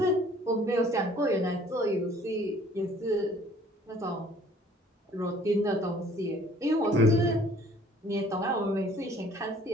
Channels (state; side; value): normal; both; correlation 0.55